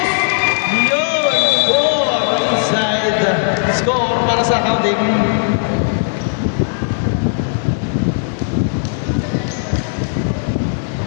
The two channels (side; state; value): right; silent; digital silence